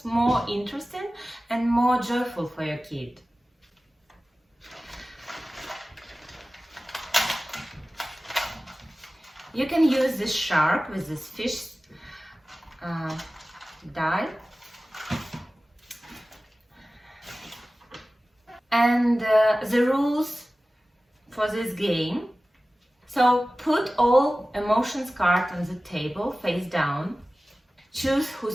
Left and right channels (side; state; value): both; normal; correlation 0.96